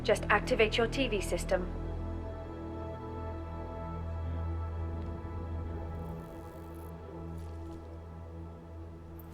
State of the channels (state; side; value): identical; both; correlation 1.00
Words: Just activate your TV system.